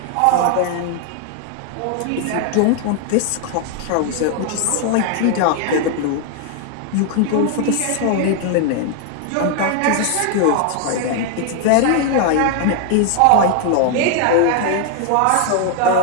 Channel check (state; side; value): different; both; correlation 0.00